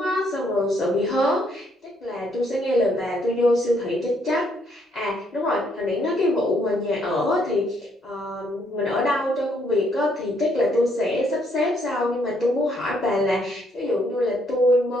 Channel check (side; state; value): both; normal; correlation 0.70